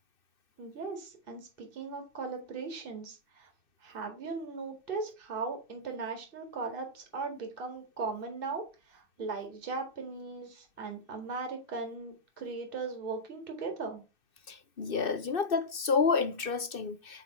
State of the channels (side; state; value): right; late; 2.6 ms